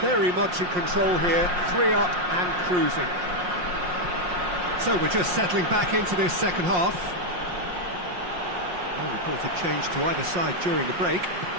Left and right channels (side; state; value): left; late; 5.6 ms